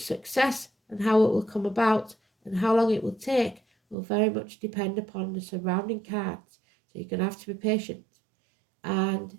and how it will come about and how long it will take will very much depend upon the surrounding cards. So you're going to have to be patient. And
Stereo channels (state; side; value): drops out; left; at 4.0 s